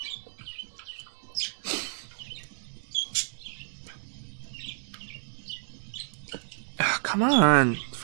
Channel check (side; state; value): left; silent; 58 dB below the other